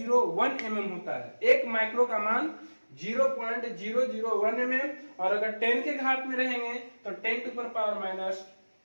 एमएम होता है। एक माइक्रो का मान 0.001 एमएम, और अगर 10 के घात में रहेंगे तो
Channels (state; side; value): inverted; both; correlation -1.00